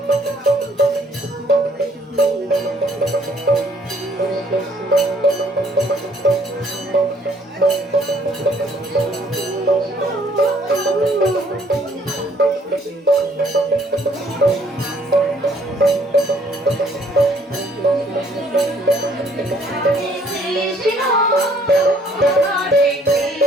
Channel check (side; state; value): both; normal; correlation 0.62